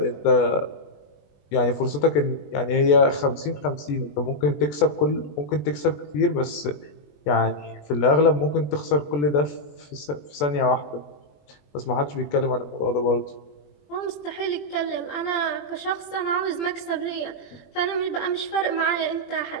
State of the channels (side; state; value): right; late; 21 ms